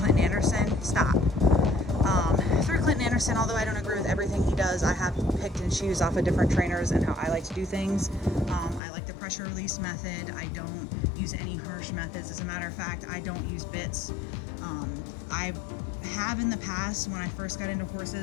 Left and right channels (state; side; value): drops out; right; at 8.8 s